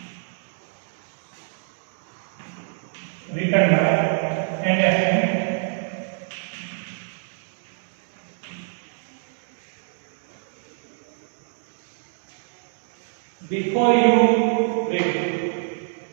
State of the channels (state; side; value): silent; left; digital silence